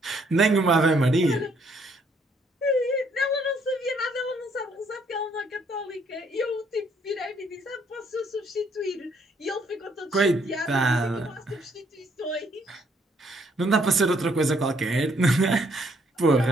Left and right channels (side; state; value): both; normal; correlation 0.68